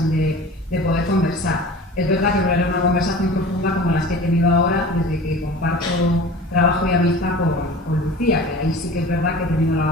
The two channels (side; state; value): both; normal; correlation 0.39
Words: de poder conversar. Es verdad que no era una conversación profunda como las que he tenido ahora desde que comparto trabajo y amistad con Lucía, que ahí sí que es verdad que he tenido